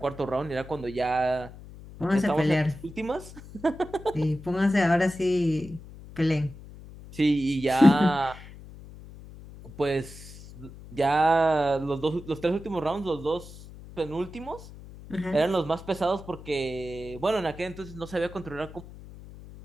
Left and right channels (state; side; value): noise; left; hum, 17 dB below the sound